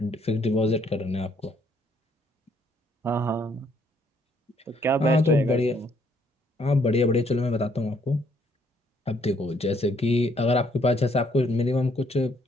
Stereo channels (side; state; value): both; normal; correlation 0.68